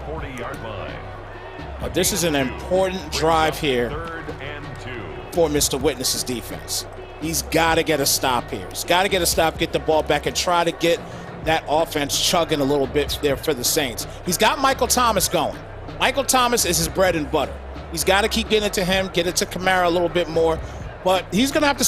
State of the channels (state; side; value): identical; both; correlation 1.00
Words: This is an important drive here for Mr. Witness's defense. He's got to get a stop here. He's got to get a stop, get the ball back, and try to get that offense chugging a little bit there for the Saints. He's got Michael Thomas going. Michael Thomas is his bread and butter. He's got to keep getting it to him, get it to Kamara a little bit more. But he's going to have to